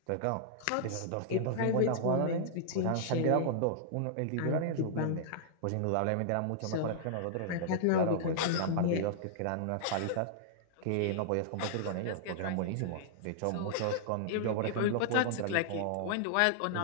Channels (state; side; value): different; both; correlation -0.01